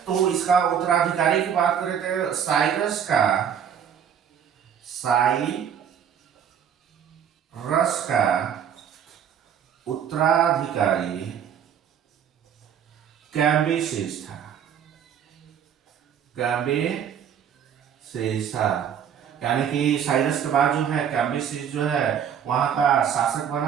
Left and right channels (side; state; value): left; quieter; 8.4 dB